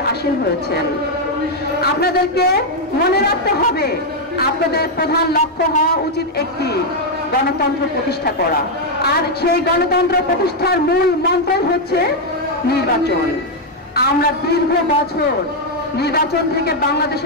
আসীন হয়েছেন। আপনাদেরকে মনে রাখতে হবে, আপনাদের প্রধান লক্ষ্য হওয়া উচিত একটি গণতন্ত্র প্রতিষ্ঠা করা, আর সেই গণতন্ত্র প্রতিষ্ঠার মূল মন্ত্র হচ্ছে নির্বাচন। আমরা দীর্ঘ বছর নির্বাচন থেকে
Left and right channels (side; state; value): both; normal; correlation 0.00